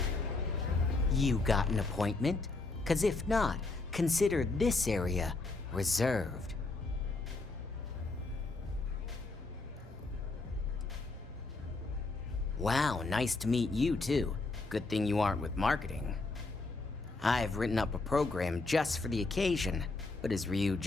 You got an appointment? 'Cause if not, consider this area reserved. Wow, nice to meet you too. Good thing you aren't with marketing. I've written up a program just for the occasion, but as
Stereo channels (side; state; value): right; quieter; 3.4 dB